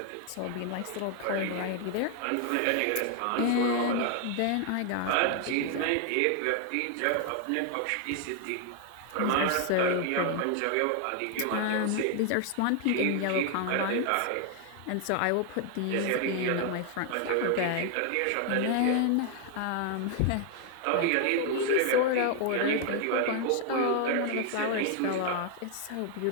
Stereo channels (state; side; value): different; both; correlation 0.00